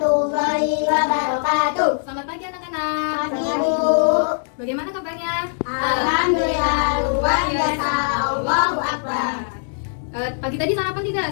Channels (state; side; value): silent; right; digital silence